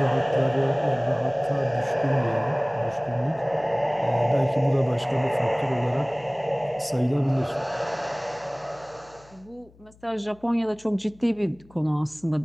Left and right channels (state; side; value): noise; left; hum, 27 dB below the sound